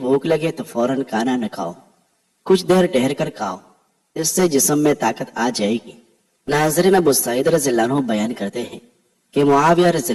لگے تو فوراً کھانا نہ کھاؤ، کچھ دیر ٹھہر کر کھاؤ، اس سے جسم میں طاقت آ جائے گی۔ ناظرین، ابو سعید رضی اللہ عنہ بیان کرتے ہیں کہ معاویہ رضی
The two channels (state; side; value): identical; both; correlation 1.00